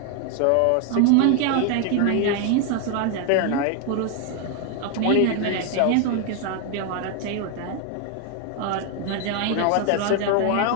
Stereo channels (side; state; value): both; different; correlation 0.00